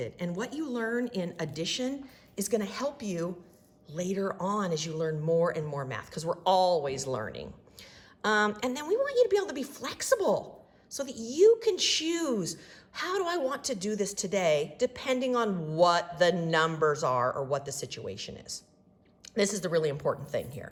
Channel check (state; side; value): identical; both; correlation 1.00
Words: and what you learn in addition is going to help you later on as you learn more and more math, because we're always learning. And then we want you to be able to be flexible so that you can choose, how do I want to do this today, depending on what the numbers are or what the situation is. This is the really important thing